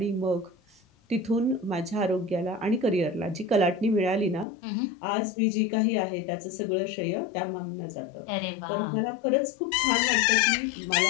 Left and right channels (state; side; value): drops out; right; at 4.5 s